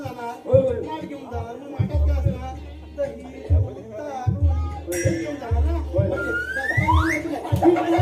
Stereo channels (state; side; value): identical; both; correlation 1.00